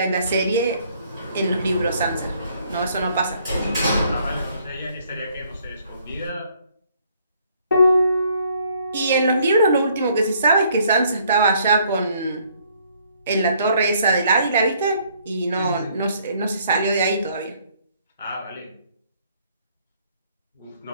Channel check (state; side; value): inverted; both; correlation -0.65